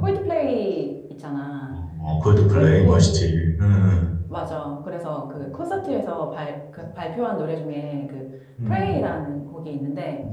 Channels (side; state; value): both; identical; correlation 1.00